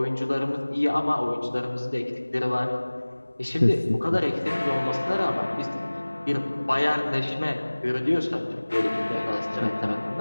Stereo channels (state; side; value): inverted; both; correlation -1.00